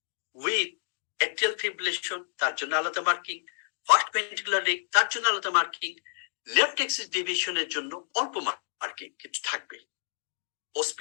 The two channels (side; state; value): right; silent; digital silence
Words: উইথ অ্যাট্রিয়াল ফিব্রিলেশন তার জন্য আলাদা মার্কিং, ফার্স্ট ভেন্ট্রিকুলার রেট তার জন্য আলাদা মার্কিং, লেফট এক্সিস ডিভিশনের জন্য অল্প মার্কিং কিছু থাকবে।